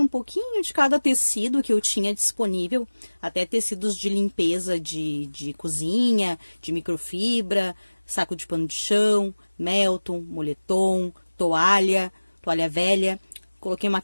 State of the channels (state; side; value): inverted; both; correlation -1.00